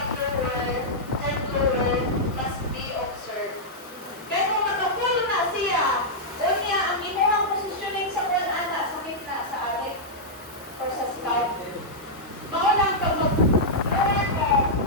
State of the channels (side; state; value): both; normal; correlation -0.07